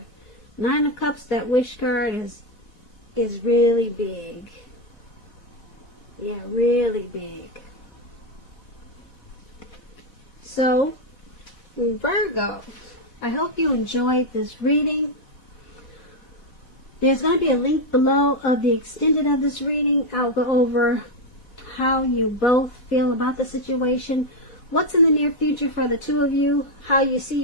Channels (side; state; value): right; late; 4.1 ms